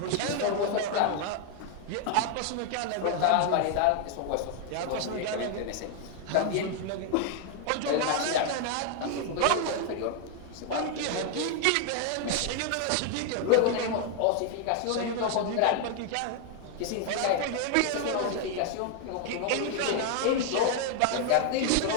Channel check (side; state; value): both; different; correlation 0.00